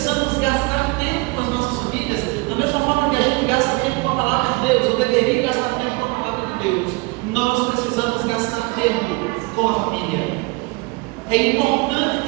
gastar tempo com as nossas famílias, da mesma forma que a gente gasta tempo com a palavra de Deus, ou deveria gastar tempo com a palavra de Deus. Nós precisamos gastar tempo com a família. É importante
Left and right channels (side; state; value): left; quieter; 25.8 dB